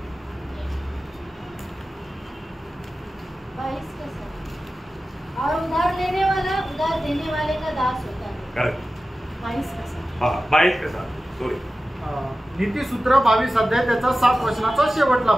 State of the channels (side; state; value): both; normal; correlation 0.95